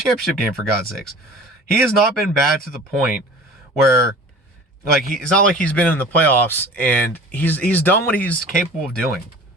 game, for God's sakes. He has not been bad to the point where, like, it's not like he's been in the playoffs and he's done what he's capable of doing.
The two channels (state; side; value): normal; both; correlation 0.43